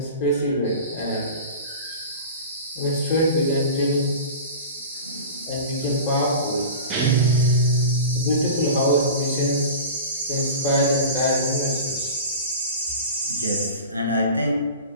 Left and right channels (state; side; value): inverted; both; correlation -0.34